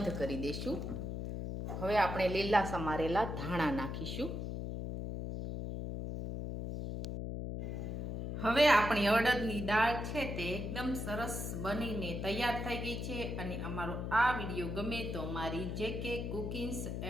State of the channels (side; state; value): left; noise; hum, 4 dB below the sound